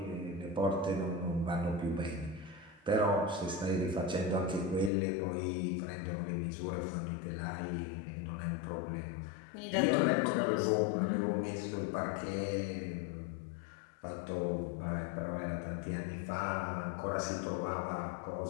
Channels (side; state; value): right; drops out; at 4.9 s